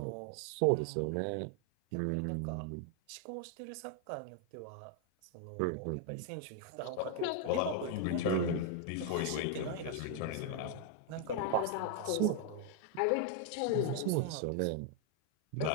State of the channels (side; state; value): both; different; correlation 0.00